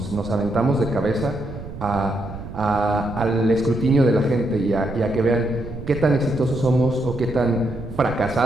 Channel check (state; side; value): noise; right; rumble, 11 dB below the sound